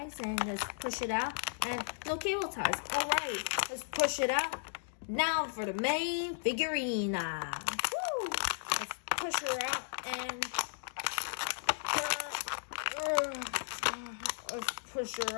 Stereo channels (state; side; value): silent; right; digital silence